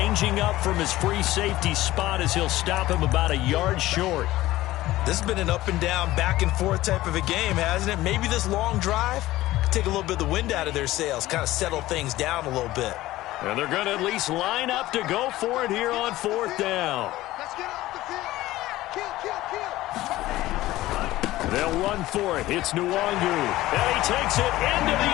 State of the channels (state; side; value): quieter; right; 16.6 dB